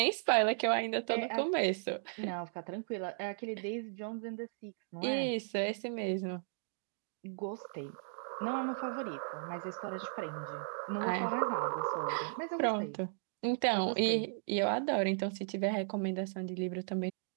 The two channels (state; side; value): silent; left; digital silence